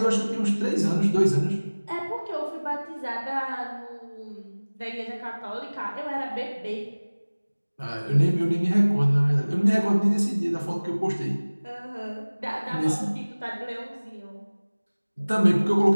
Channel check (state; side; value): inverted; both; correlation -1.00